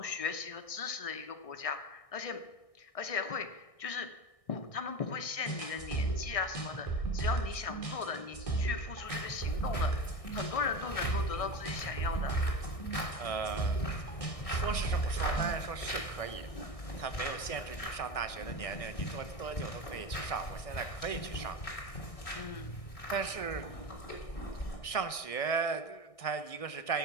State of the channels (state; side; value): late; right; 1.6 ms